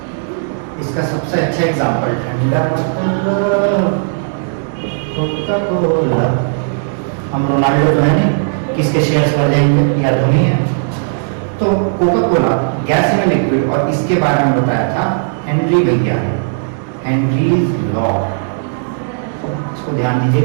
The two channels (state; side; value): silent; left; 70 dB below the other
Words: इसका सबसे अच्छा एग्जांपल ठंडा कोका कोला। हम रोनाल्डो तो है नहीं, किसके शेयर्स बढ़ जाएंगे, या धोनी है। तो Coca Cola gas in liquid, और इसके बारे में बताया था हेनरी भैया ने, हेनरीज लॉ। इसको ध्यान